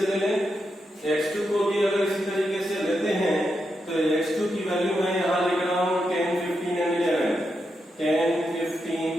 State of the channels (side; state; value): both; normal; correlation 0.85